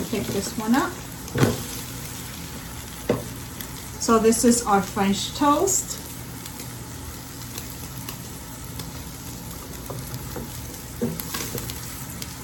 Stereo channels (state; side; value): identical; both; correlation 1.00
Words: pick this one up. So this is our French toast.